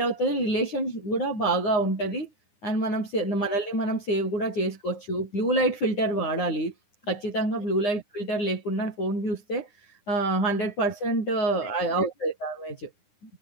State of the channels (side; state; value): right; late; 9.8 ms